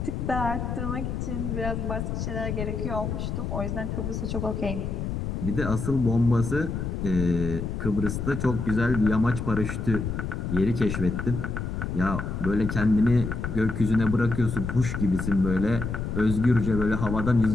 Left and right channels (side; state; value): left; noise; rumble, 3 dB below the sound